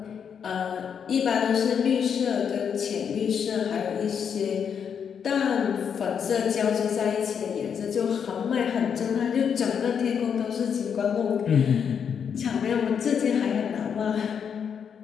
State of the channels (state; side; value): quieter; right; 7.3 dB